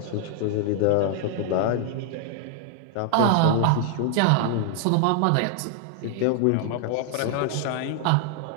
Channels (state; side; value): different; both; correlation 0.00